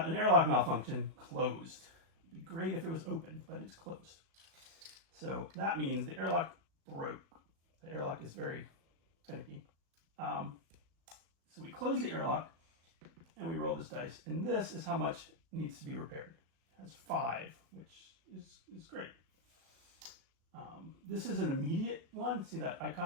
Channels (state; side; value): late; left; 37 ms